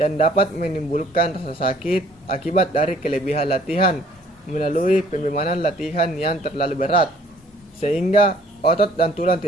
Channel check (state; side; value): normal; both; correlation 0.58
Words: yang dapat menimbulkan rasa sakit akibat dari kelebihan latihan melalui pembebanan latihan yang terlalu berat sehingga otot dan tulang